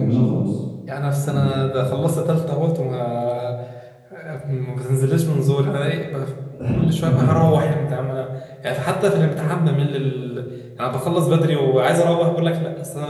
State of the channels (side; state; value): both; identical; correlation 1.00